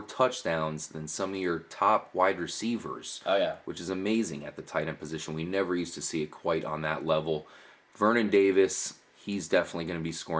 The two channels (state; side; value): identical; both; correlation 1.00